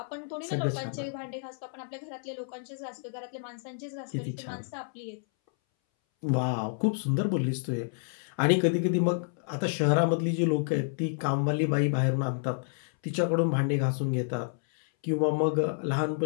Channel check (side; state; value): right; silent; 58 dB below the other